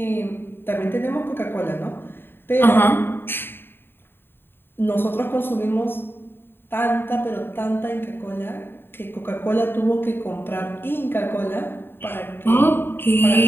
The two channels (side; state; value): right; late; 0.10 ms